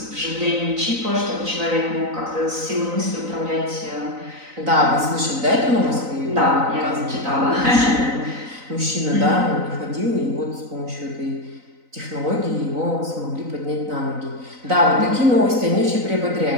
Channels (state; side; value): late; left; 3.9 ms